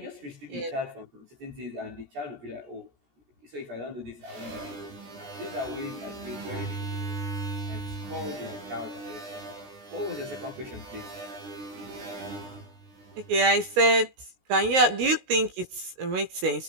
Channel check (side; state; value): left; late; 17 ms